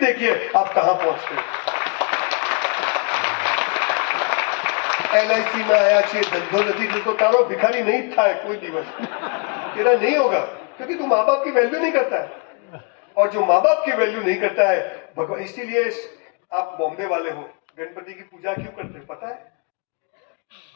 आप कहां पहुंचते हैं। LIC में आया चाहिए धंधो नदी तो तारो भिखारी नहीं था कोई दिवस तेरा नहीं होगा, क्योंकि तू माँ बाप की वैल्यू नहीं करता है। और जो माँ बाप की वैल्यू नहीं करता है भगवान, इसीलिए आप बॉम्बे वाले हो, गणपति की पूजा क्यों करते हो पता है?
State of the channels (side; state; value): right; quieter; 34.1 dB